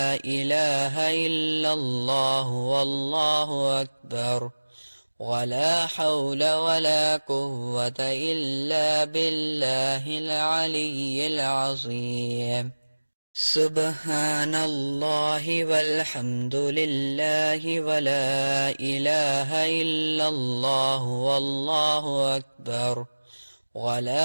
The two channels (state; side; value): inverted; both; correlation -1.00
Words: إله إلا الله والله أكبر ولا حول ولا قوة إلا بالله العلي العظيم. سبحان الله والحمد لله ولا إله إلا الله والله أكبر